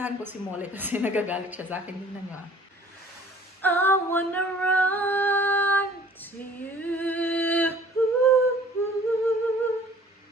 ko si Molly kasi nagagalit siya sa akin. Tingnan niyo ah. I wanna run to you.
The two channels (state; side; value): normal; both; correlation 0.53